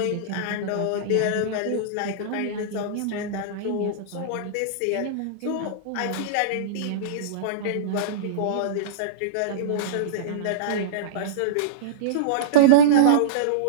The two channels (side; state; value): both; different; correlation -0.04